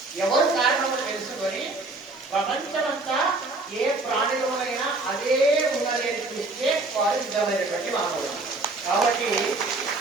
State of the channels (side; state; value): left; quieter; 3.2 dB